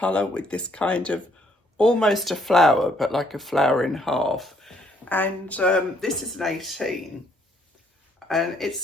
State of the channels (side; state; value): both; normal; correlation 0.68